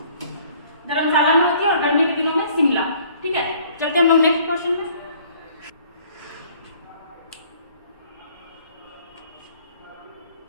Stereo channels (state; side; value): inverted; both; correlation -0.57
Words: धर्मशाला में होती है और गर्मी के दिनों में शिमला। ठीक है, चलते हम लोग नेक्स्ट क्वेश्चन में।